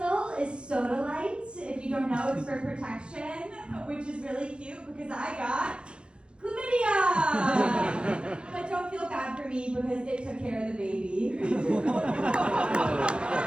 is Soda Light. If you don't know, it's for protection, which is really cute because I got chlamydia. But don't feel bad for me because it took care of the baby.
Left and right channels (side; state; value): left; late; 0.055 ms